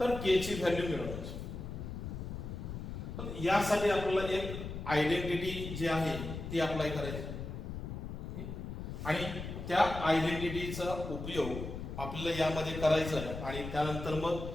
k ची व्हॅल्यू मिळवायची. पण यासाठी आपल्याला एक आयडेंटिटी जी आहे ती अप्लाय करायची आणि त्या आयडेंटिटीचा उपयोग आपल्याला यामध्ये करायचा आहे आणि त्यानंतर मग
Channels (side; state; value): left; noise; rumble, 7 dB below the sound